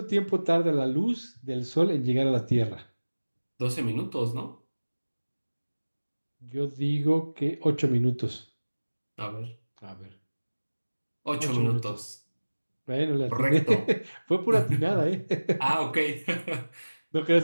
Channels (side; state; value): both; inverted; correlation -1.00